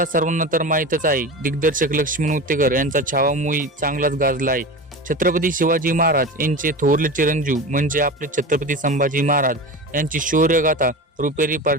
सर्वांना तर माहीतच आहे, दिग्दर्शक लक्ष्मण उत्तेकर यांचा छावा मूवी चांगलाच गाजला आहे. छत्रपती शिवाजी महाराज यांचे थोरले चिरंजीव म्हणजे आपले छत्रपती संभाजी महाराज यांची शौर्यगाथा रुपेरी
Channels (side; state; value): both; normal; correlation 0.29